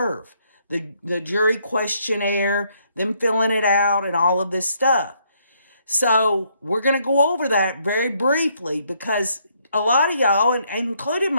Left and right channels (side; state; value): both; inverted; correlation -0.71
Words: the jury questionnaire, them filling it out, and all of this stuff. So we're going to go over that very briefly because a lot of y'all, and including